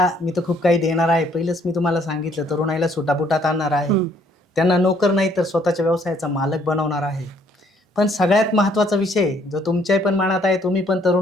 मी तर खूप काही देणार आहे. पहिलंच मी तुम्हाला सांगितलं, तरुणाईला सुटापुटात आणणार आहे. त्यांना नोकर नाही तर स्वतःच्या व्यवसायाचा मालक बनवणार आहे. पण सगळ्यात महत्त्वाचा विषय जो तुमच्याही पण मनात आहे, तुम्ही पण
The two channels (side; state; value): both; normal; correlation 0.64